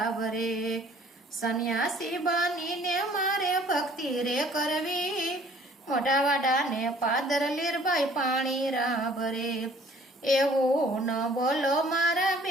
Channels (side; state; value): both; normal; correlation 0.55